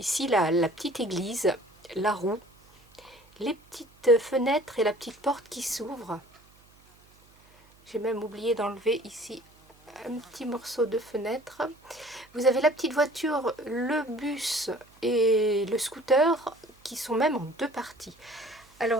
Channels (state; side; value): noise; right; hum, 29 dB below the sound